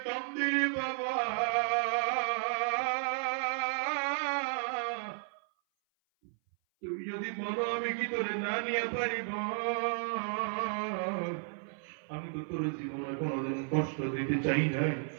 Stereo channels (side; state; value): left; silent; 56 dB below the other